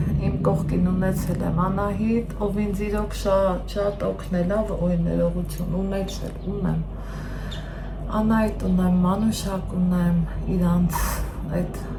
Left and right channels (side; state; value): both; identical; correlation 1.00